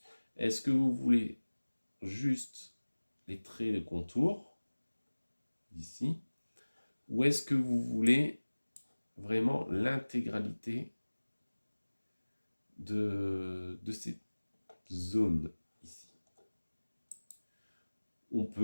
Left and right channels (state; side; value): inverted; both; correlation -1.00